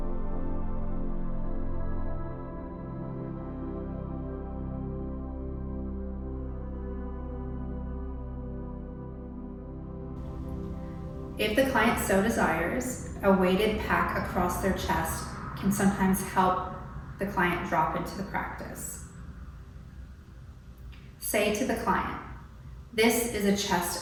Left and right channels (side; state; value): both; identical; correlation 1.00